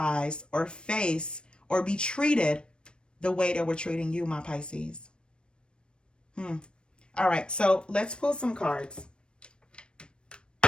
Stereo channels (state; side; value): late; right; 0.055 ms